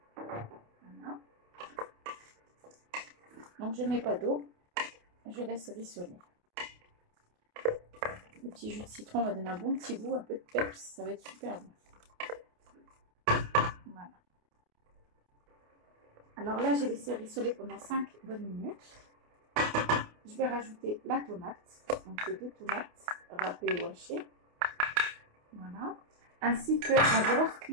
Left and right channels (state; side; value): late; left; 28 ms